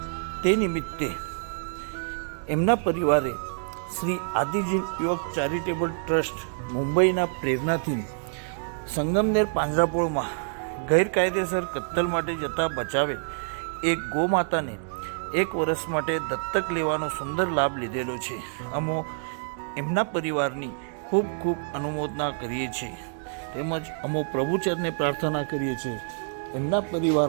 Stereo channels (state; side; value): silent; left; digital silence